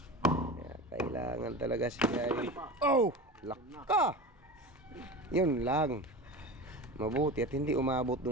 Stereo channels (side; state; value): both; normal; correlation 0.30